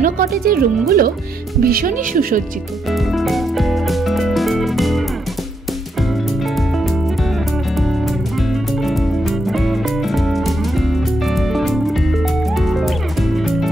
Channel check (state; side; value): normal; both; correlation 0.80